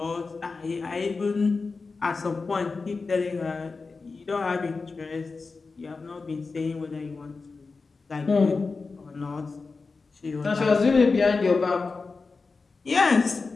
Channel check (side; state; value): right; quieter; 4.2 dB